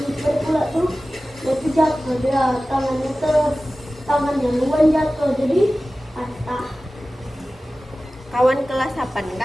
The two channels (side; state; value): both; normal; correlation 0.96